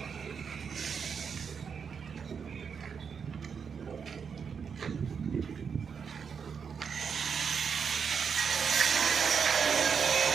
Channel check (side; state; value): left; quieter; 6.4 dB